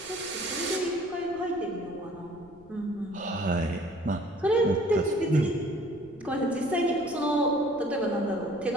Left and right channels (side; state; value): left; noise; rumble, 24 dB below the sound